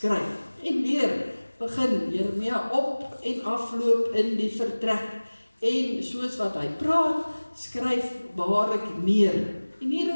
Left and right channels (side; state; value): both; inverted; correlation -1.00